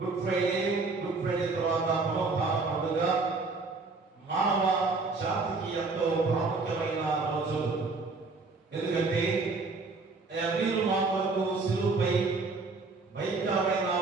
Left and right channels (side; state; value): left; quieter; 3.9 dB